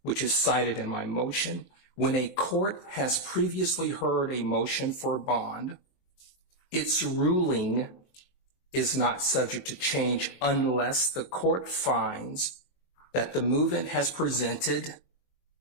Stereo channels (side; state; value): right; late; 22 ms